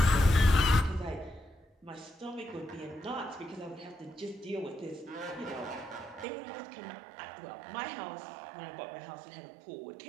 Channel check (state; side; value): drops out; left; at 6.2 s